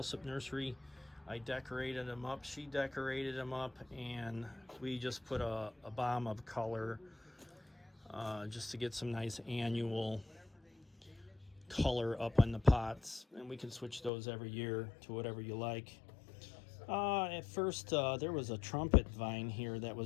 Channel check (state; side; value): drops out; right; at 14.1 s